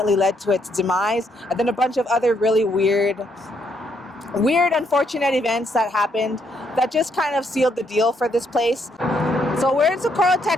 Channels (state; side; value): normal; both; correlation 0.73